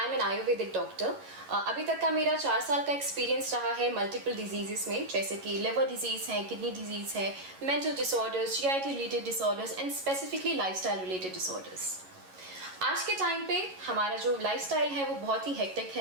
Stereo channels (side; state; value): left; late; 11 ms